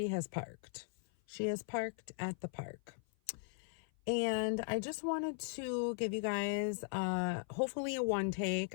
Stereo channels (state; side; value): silent; right; 52 dB below the other